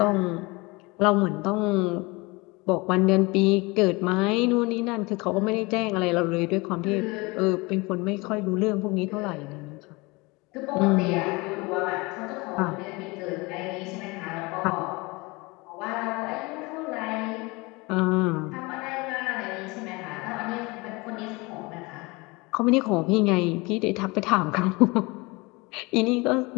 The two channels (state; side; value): quieter; right; 25.0 dB